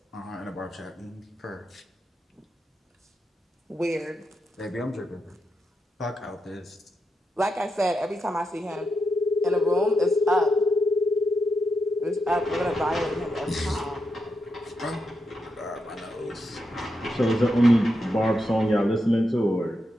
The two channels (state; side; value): normal; both; correlation 0.85